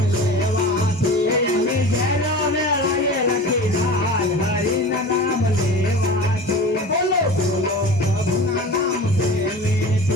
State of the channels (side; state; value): both; normal; correlation 0.36